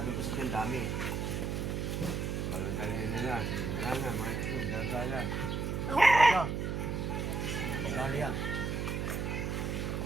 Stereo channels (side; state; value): right; noise; hum, 1 dB below the sound